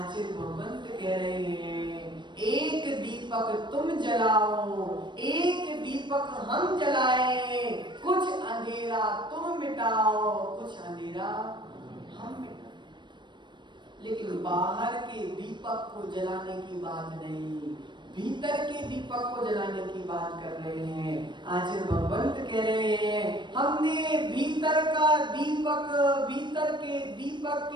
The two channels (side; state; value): left; late; 0.22 ms